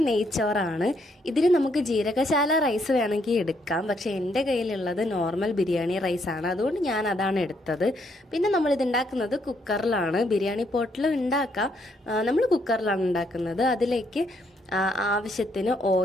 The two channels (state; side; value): normal; both; correlation 0.73